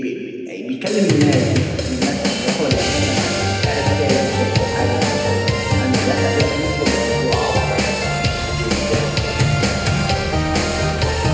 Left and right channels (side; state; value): both; identical; correlation 1.00